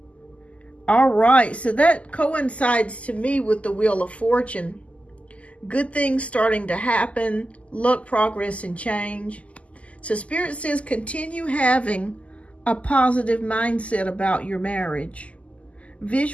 All right, so that coincides to me with the Wheel of Fortune. Good things starting to happen, luck, progress, and change. So Spirit says continue having a positive mindset about your marriage.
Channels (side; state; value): right; late; 0.065 ms